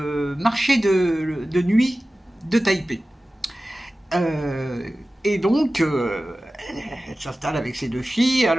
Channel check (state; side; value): normal; both; correlation 0.96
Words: marché de nuit de Taipei. Et donc, elle s'installe avec ses deux filles.